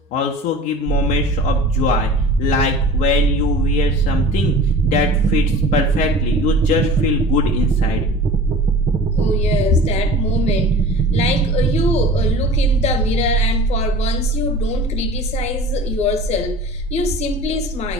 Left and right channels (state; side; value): normal; both; correlation 0.40